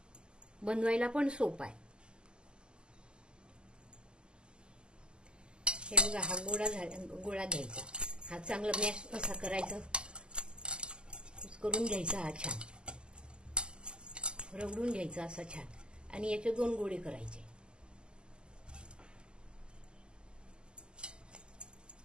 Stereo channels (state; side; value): late; left; 0.048 ms